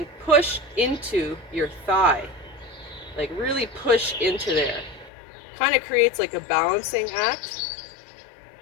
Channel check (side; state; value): right; drops out; at 5.1 s